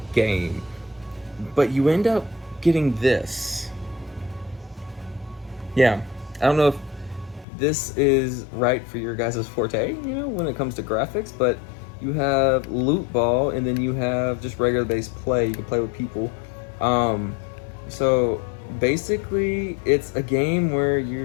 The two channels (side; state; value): right; drops out; at 7.5 s